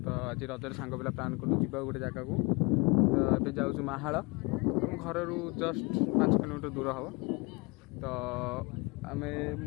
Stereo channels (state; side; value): quieter; right; 28.0 dB